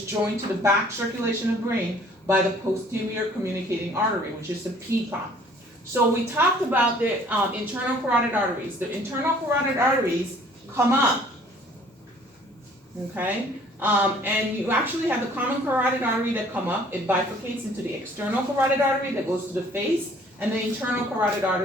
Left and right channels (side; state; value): both; normal; correlation 0.56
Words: joined to the back circulation of the brain by the posterior communicating artery, which is the PCOM. So we talked about the internal carotid arteries. The internal carotid arteries come up, okay? And you actually have the common carotid artery that come up. It bifurcates into the external carotid artery that goes to the face, and the internal carotid